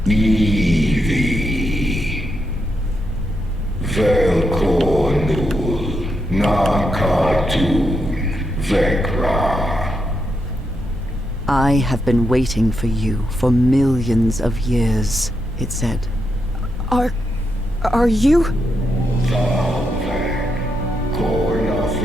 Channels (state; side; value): normal; both; correlation 0.83